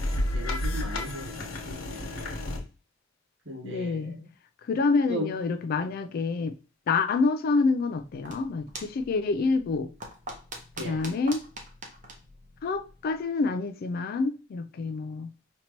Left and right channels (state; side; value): quieter; right; 3.2 dB